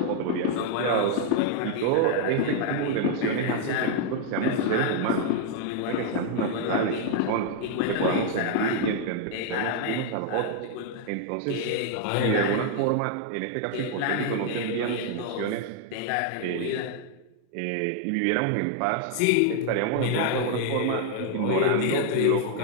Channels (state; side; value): different; both; correlation 0.00